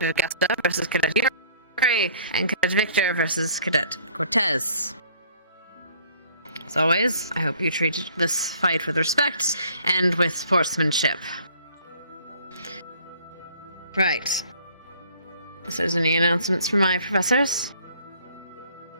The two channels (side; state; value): both; inverted; correlation -0.56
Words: Augusta versus Cadet Yuri, and Cadet Victor versus Cadet Cortez. As always, I hope you treat this fight with respect and with sportsmanship. Right. If there's any announcements from my professors?